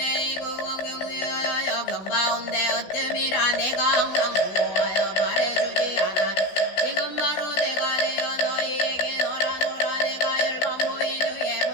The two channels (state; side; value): late; right; 16 ms